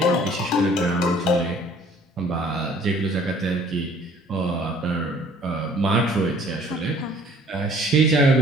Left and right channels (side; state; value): both; normal; correlation 0.55